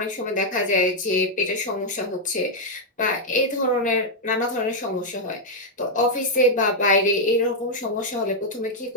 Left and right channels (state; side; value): normal; both; correlation -0.02